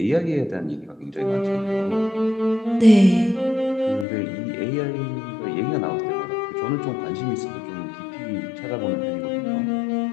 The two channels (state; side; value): drops out; right; at 4.0 s